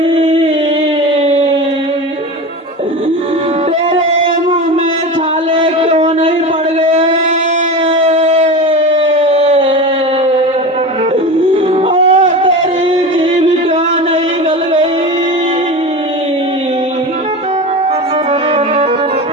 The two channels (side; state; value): both; normal; correlation 0.27